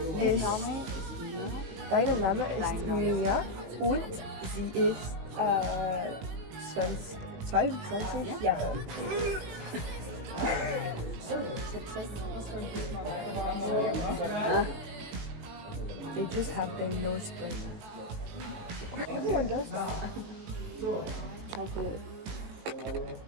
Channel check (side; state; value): left; late; 19 ms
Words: Name ist Mia und sie ist 22 Jahre. They just have their nose split. Everyone does that. Chocolate.